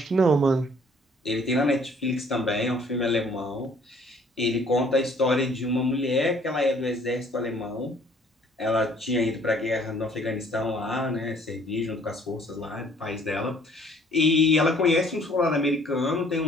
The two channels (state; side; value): normal; both; correlation 0.58